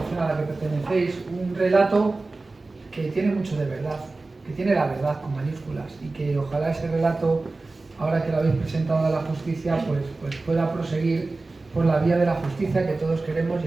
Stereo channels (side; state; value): left; quieter; 3.4 dB